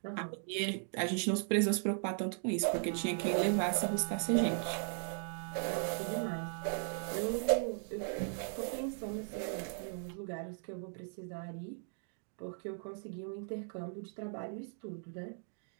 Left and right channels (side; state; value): left; silent; 53 dB below the other